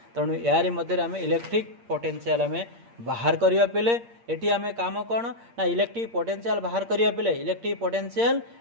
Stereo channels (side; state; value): left; late; 8.6 ms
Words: तेणु यार मध्य आम इलेक्ट्रिक पोटेंशियल आम बाहर करवा पे एटी आम काम कौन ना इलेक्ट्रिक पोटेंशियल बाहर करवा पे electric potential